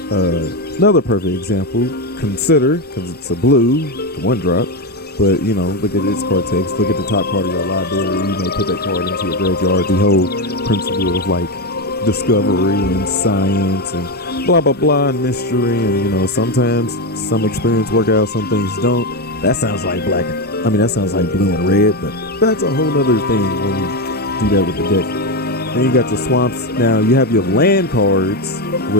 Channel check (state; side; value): normal; both; correlation 0.11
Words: Another perfect example, consider, because it's a blue, the 1-drop. But, you know, look at its card text. Look at the top card of your library. You may put that card into your graveyard. The whole principle of, like, discovery and science and blah, blah, blah, and mystery. And, you know, sometimes some experience work out, some things don't. That sounds like black. I mean, that sounds like blue and red. But that's a whole other thing when you do that with the deck. Then you got your swamps. Now, you have your land cards,